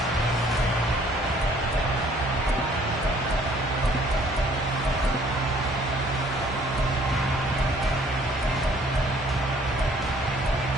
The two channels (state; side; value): normal; both; correlation 0.59